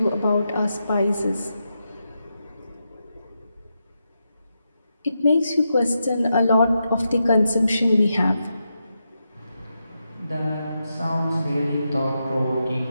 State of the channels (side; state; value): both; inverted; correlation -0.86